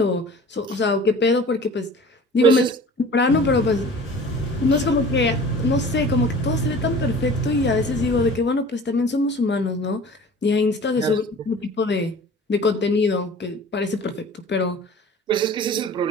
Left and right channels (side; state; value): both; normal; correlation 0.43